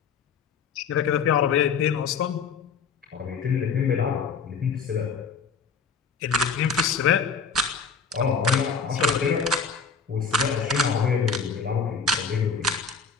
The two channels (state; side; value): quieter; right; 5.6 dB